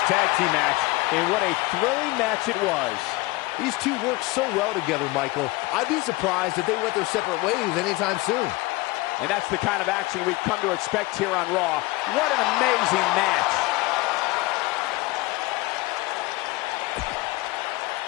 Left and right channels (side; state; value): right; quieter; 21.5 dB